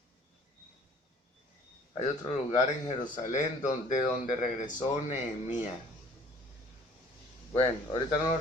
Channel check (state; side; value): normal; both; correlation 0.53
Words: hay otro lugar en Jerusalén de donde regresó Nehemías. Bueno, ahorita no lo